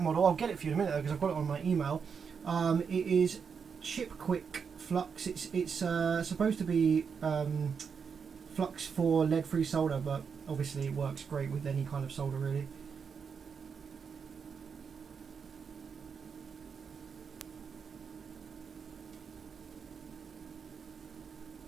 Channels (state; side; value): quieter; left; 6.2 dB